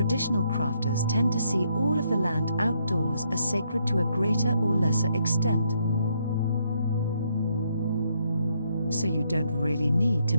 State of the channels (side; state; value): both; inverted; correlation -0.74